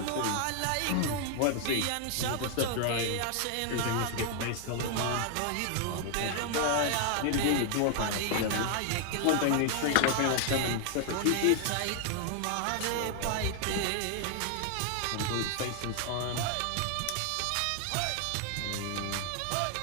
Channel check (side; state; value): both; different; correlation 0.00